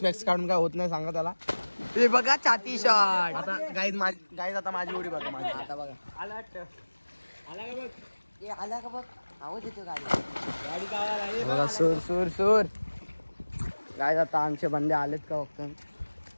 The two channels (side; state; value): both; inverted; correlation -1.00